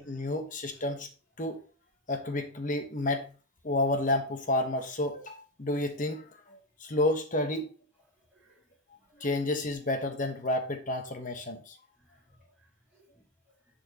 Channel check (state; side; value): normal; both; correlation 0.07